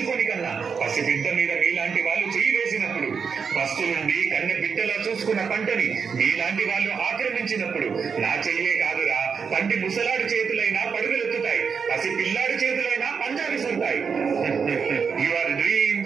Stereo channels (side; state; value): left; quieter; 6.0 dB